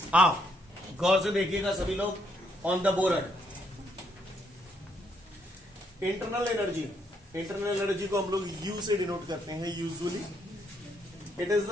आओ गौर से देखिएगा सभी लोग on the board. Internal energy को हम लोग यू से डिनोट करते हैं usually. It is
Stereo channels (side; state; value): both; normal; correlation 0.73